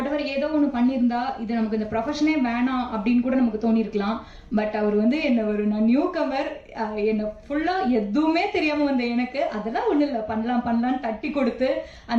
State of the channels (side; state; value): both; identical; correlation 1.00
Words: ஏதோ ஒன்று பண்ணியிருந்தா இது நமக்கு இந்த ப்ரொஃபஷனே வேணாம் அப்படின்னு கூட நமக்கு தோணியிருக்கலாம். பட் அவர் வந்து நான் நியூ கமர், என்னை ஃபுல்லாக எதுவுமே தெரியாமல் வந்த எனக்கு அதெல்லாம் ஒன்றும் இல்லை, பண்ணலான்னு தட்டி கொடுத்து